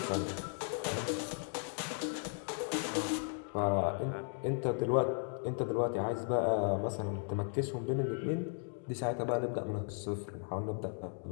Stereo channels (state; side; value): silent; right; 54 dB below the other